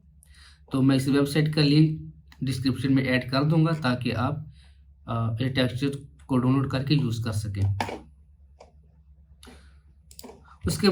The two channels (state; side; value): identical; both; correlation 1.00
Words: तो मैं इस वेबसाइट का लिंक डिस्क्रिप्शन में ऐड कर दूंगा ताकि आप ये टेक्सचर को डाउनलोड करके यूज़ कर सकें। उसके